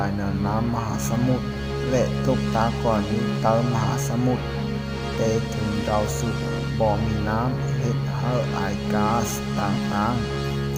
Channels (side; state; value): both; identical; correlation 1.00